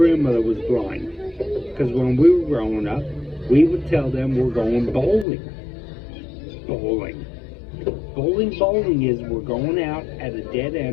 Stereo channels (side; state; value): right; drops out; at 5.2 s